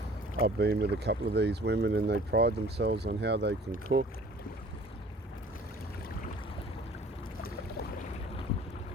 I've been with a couple of these women and they pride themselves on how they can cook.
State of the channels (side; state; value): both; normal; correlation 0.50